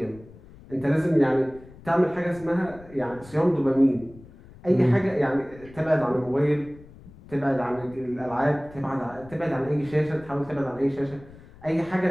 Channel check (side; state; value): left; noise; rumble, 21 dB below the sound